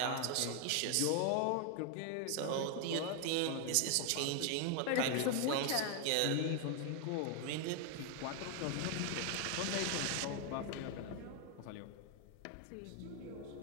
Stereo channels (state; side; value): different; both; correlation 0.00